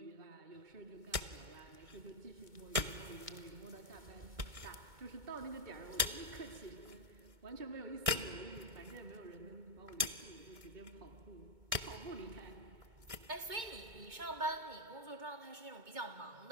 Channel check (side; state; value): left; late; 2.2 ms